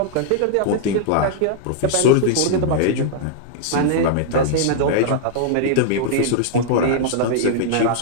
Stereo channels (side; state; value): both; different; correlation -0.01